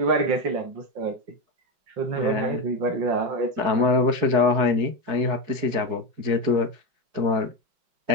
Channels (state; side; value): late; left; 4.7 ms